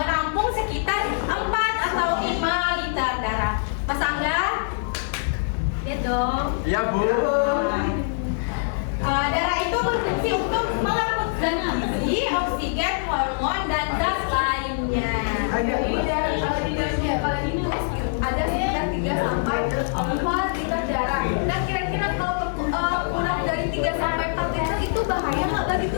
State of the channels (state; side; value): silent; right; digital silence